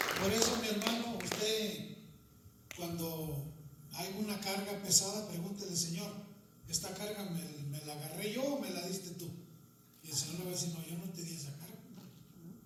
Por eso, mi hermano, usted, cuando hay una carga pesada, pregúntele, Señor, ¿esta carga me la agarré yo o me la diste tú? Y el Señor le va a decir, no, yo no te di esa carga,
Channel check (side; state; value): both; identical; correlation 1.00